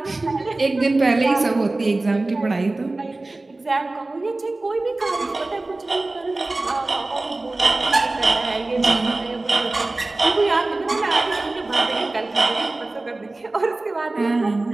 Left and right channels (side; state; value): left; quieter; 3.0 dB